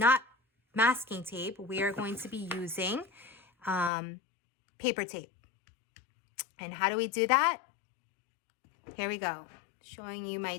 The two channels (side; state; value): right; drops out; at 3.9 s